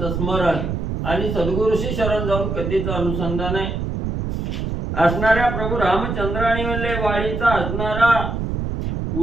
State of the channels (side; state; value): right; noise; rumble, 3 dB below the sound